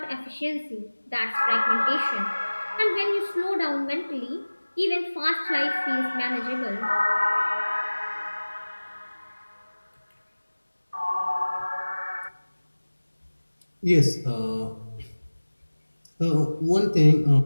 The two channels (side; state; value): both; inverted; correlation -1.00